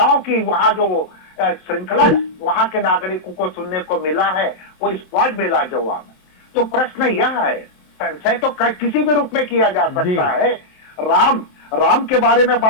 की वहां जो श्रृंखला वहां के नागरिकों को सुनने को मिला है, वो स्पॉट मिला जवाब में। तो प्रश्न यह है, संशय तो किसी भी रूप में किया जा सकता है। राम के बारे में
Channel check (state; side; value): late; right; 27 ms